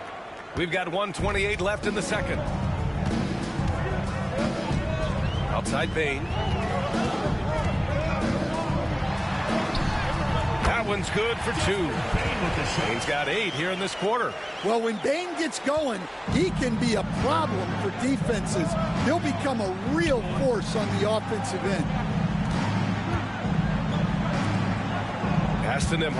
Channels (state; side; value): identical; both; correlation 1.00